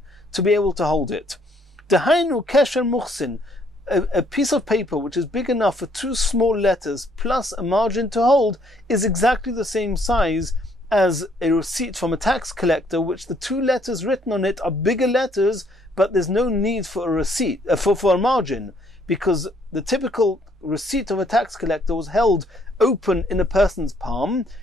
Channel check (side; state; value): both; normal; correlation 0.66